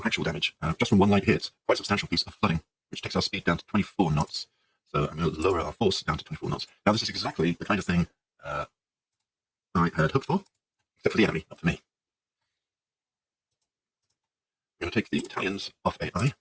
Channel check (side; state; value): both; identical; correlation 1.00